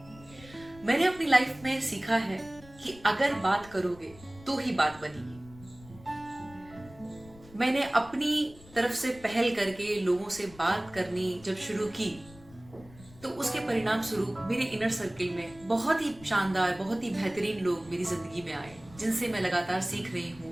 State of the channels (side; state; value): left; noise; rumble, 21 dB below the sound